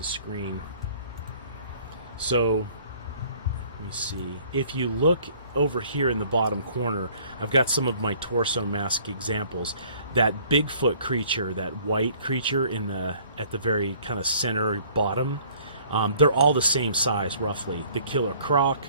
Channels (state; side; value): inverted; both; correlation -0.56